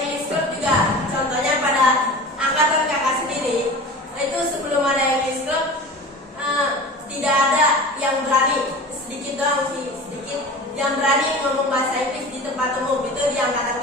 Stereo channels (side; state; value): both; normal; correlation 0.36